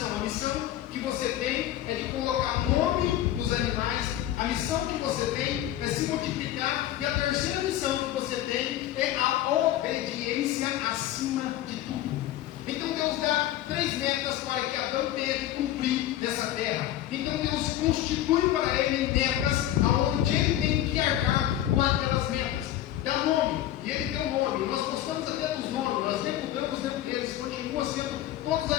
A missão que você tem é de colocar nome nos animais. A missão que você tem é se multiplicar. E a terceira missão que você tem é a obediência acima de tudo. Então Deus dá 3 metas para que Adão tenha que cumprir nessa terra. Então Deus constitui para ele metas onde ele tem que arcar com aquelas metas. Dá nome, e ele tem um nome. Nós gostamos até dos nomes, nós nem mudamos dentro deles, continua sendo, todos os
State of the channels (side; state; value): right; quieter; 13.1 dB